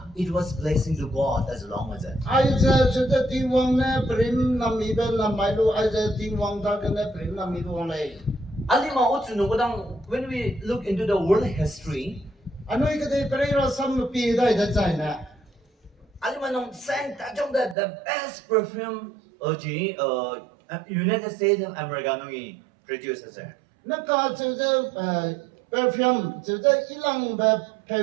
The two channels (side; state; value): left; drops out; at 17.8 s